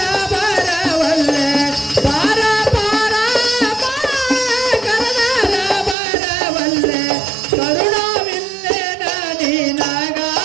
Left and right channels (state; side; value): drops out; left; at 6.0 s